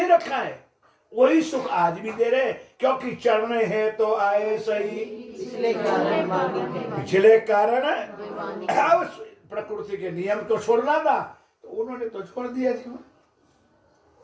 रखा है, वही सुख आज भी दे रहे, क्योंकि चरणे है तो आए सही, पिछले कारण प्रकृति के नियम को छोड़ना था तो उन्होंने तो छोड़ दिया जीवन।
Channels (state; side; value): identical; both; correlation 1.00